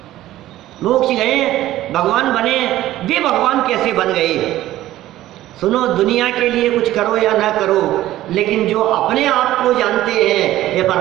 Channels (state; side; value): quieter; left; 14.6 dB